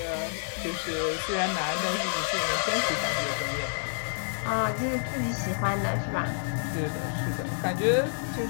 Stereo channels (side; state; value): right; silent; digital silence